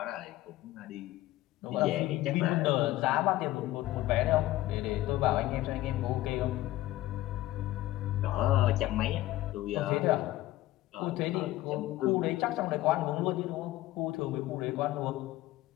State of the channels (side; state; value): right; quieter; 16.2 dB